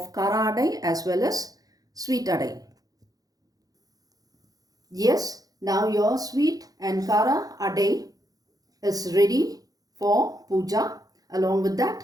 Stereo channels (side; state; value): left; late; 0.18 ms